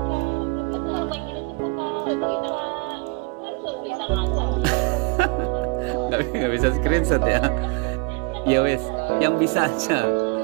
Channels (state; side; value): quieter; left; 29.7 dB